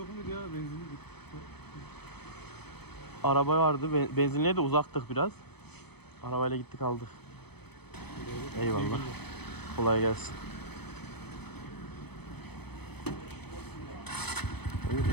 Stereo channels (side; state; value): right; late; 0.97 ms